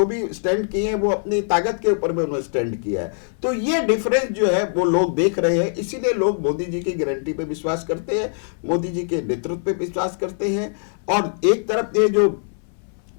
भी स्टैंड किए हैं वो अपनी ताकत के ऊपर में उन्होंने स्टैंड किया है। तो ये डिफरेंस जो है वो लोग देख रहे हैं, इसीलिए लोग मोदी जी की गारंटी पे विश्वास करते हैं, मोदी जी के नेतृत्व पे विश्वास करते हैं। और एक तरफ ये जो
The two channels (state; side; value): silent; right; 60 dB below the other